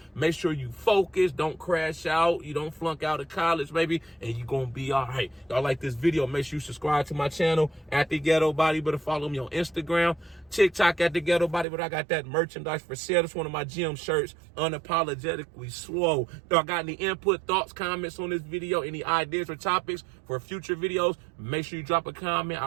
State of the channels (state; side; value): drops out; left; at 11.7 s